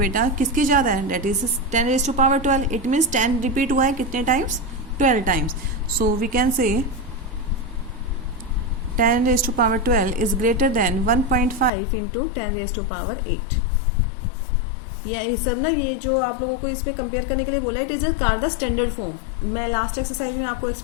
किसकी ज़्यादा है, that is 10⁻12। It means 10 repeat हुआ है कितने times, 12 times. So we can say 10⁻12 is greater then 1.5 into 10⁻8। ये सब ना, ये जो आप लोगों को इसमें कंपेयर करने के लिए बोला, it is car the standard form. मैं लास्ट एक्सरसाइज में आपको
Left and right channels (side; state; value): right; drops out; at 11.7 s